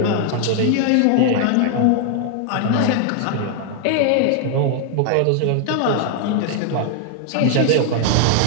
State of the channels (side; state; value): both; different; correlation 0.00